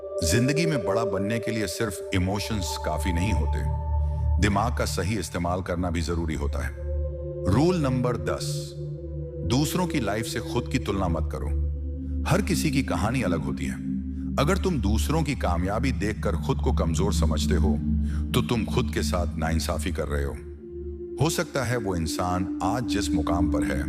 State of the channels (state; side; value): identical; both; correlation 1.00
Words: जिंदगी में बड़ा बनने के लिए सिर्फ इमोशंस काफी नहीं होते, दिमाग का सही इस्तेमाल करना भी जरूरी होता है। रूल नंबर 10, दूसरों की लाइफ से खुद की तुलना मत करो। हर किसी की कहानी अलग होती है। अगर तुम दूसरों की कामयाबी देखकर खुद को कमजोर समझते हो, तो तुम खुद के साथ नाइंसाफी कर रहे हो सकता है वो इंसान आज जिस मुकाम पर है,